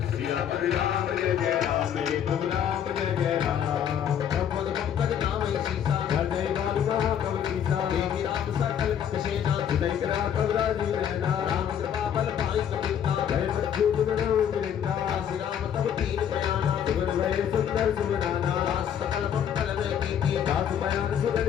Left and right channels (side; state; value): right; quieter; 9.0 dB